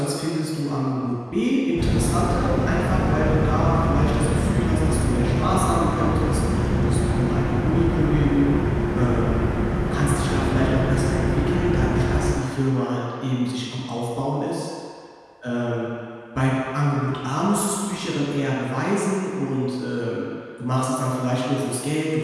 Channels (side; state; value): both; identical; correlation 1.00